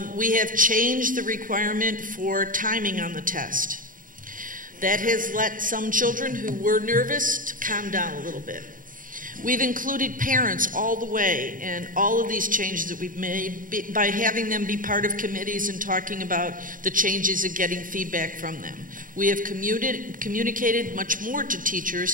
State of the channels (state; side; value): late; left; 0.39 ms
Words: We have changed the requirement for timing on the test. That has let some children who were nervous to calm down a little bit. We've included parents all the way in all of these changes that we've made by having them be part of committees and talking about the changes and getting feedback from them. We have communicated much more to